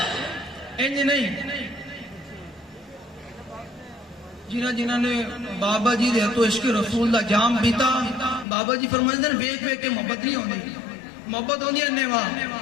انج نہیں، جنہ نے بابا جی دے تو عشق رسول دا جام پیتا، بابا جی فرمائیں دن ویک ویک کے محبت نہیں ہوندی، محبت ہوندی ہے انہیوا،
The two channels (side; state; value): right; drops out; at 8.5 s